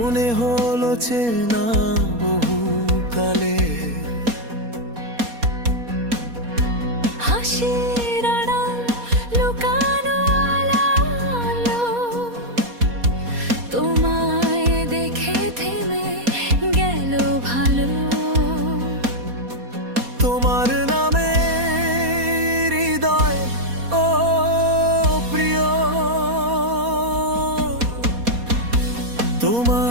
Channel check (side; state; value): left; late; 4.2 ms